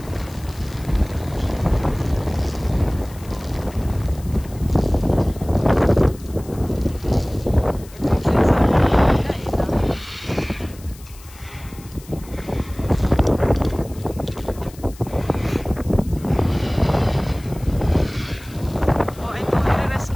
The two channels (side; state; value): left; noise; hiss, 22 dB below the sound